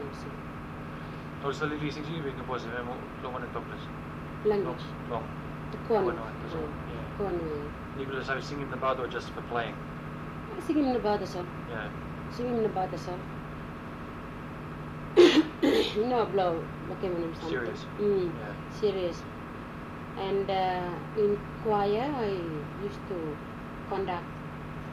of thing. Oh, so the sing sing bigyan po sa mo long and topless. Language. Long. The corn. Yeah. Corn. You could have singing the bad or just for playing. Singing about the song. Yeah. Singing about the song. You know, blow. Okay, when I'm something. Serious. Yeah. Serious. And in choir, I used to conduct.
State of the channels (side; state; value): both; identical; correlation 1.00